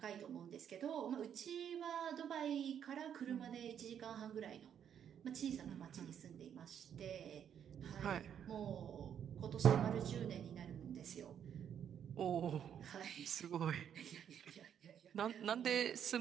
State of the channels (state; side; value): quieter; left; 8.9 dB